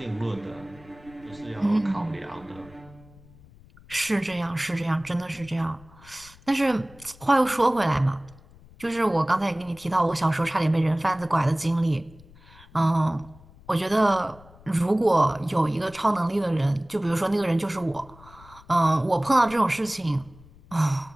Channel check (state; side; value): noise; left; rumble, 23 dB below the sound